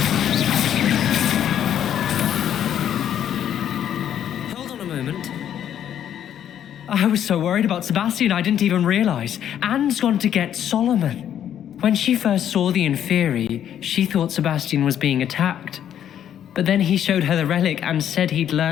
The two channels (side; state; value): right; quieter; 10.0 dB